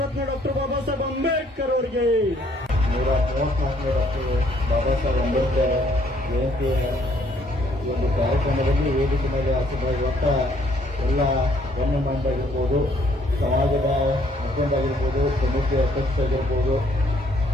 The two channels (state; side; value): normal; both; correlation 0.65